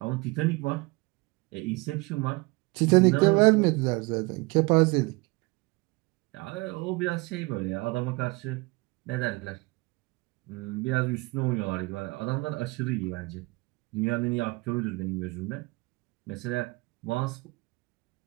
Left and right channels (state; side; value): quieter; left; 25.0 dB